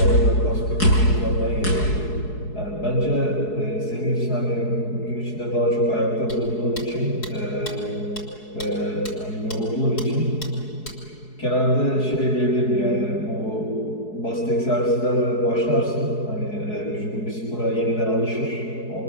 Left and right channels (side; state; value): right; late; 4.7 ms